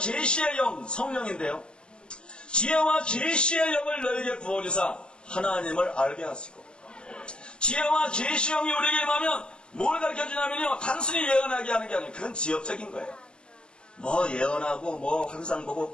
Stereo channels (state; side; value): late; right; 0.050 ms